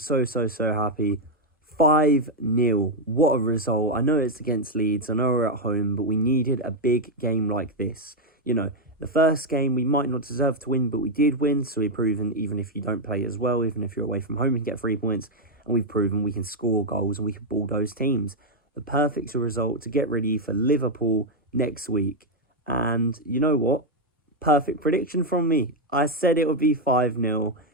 happy. 5-0. What a result. I know it's against Leeds. I know we're at home, but we needed a big game like this. The first game we might not deserve to win, but we did win. So we've proven even if you don't play as well, even if you're away from home, you can get 3 points. And we've proven we can score goals and we can bulldoze teams. The perfect result to get ready for Liverpool next week. And you know what? Perfect prediction from me. I said it would be 5-0.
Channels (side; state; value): both; normal; correlation 0.02